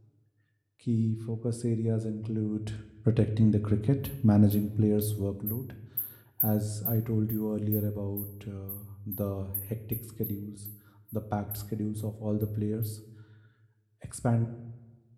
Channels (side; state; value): both; identical; correlation 1.00